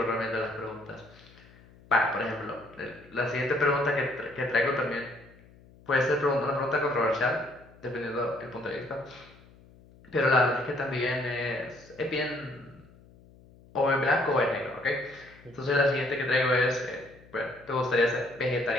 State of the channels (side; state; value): left; noise; hum, 25 dB below the sound